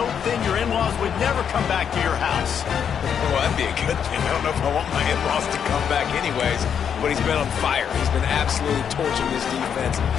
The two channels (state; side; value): quieter; right; 7.9 dB